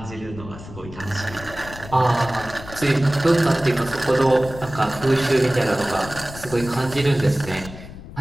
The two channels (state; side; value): noise; left; rumble, 15 dB below the sound